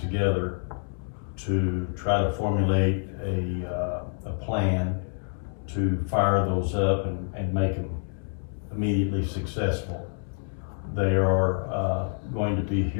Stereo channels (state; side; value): silent; right; digital silence